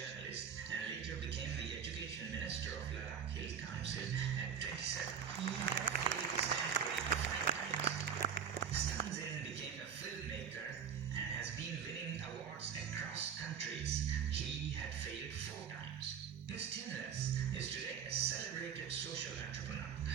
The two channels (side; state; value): left; quieter; 7.5 dB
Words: and later became the education minister of Ladakh Hill Council at 27. He had failed his temporary 5 times. Stunzen became a filmmaker and has been winning awards across countries. He had failed 4 times. Miss Tinless is today a celebrated social entrepreneur.